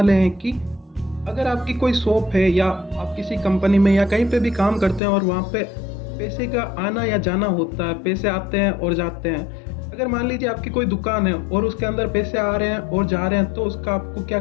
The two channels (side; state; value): right; drops out; at 5.0 s